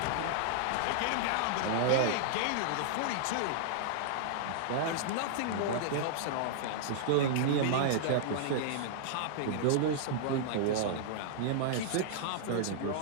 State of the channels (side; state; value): both; different; correlation -0.01